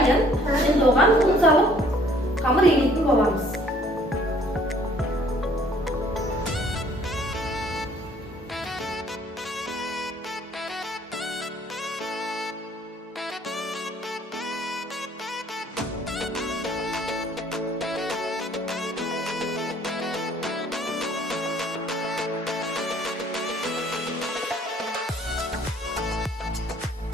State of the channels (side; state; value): both; normal; correlation 0.59